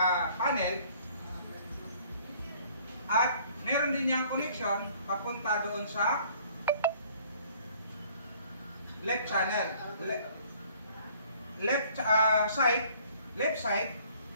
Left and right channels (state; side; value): inverted; both; correlation -0.57